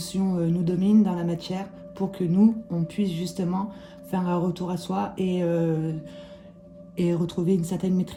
nous domine dans la matière pour que nous, on puisse justement faire un retour à soi et retrouver une certaine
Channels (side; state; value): both; identical; correlation 1.00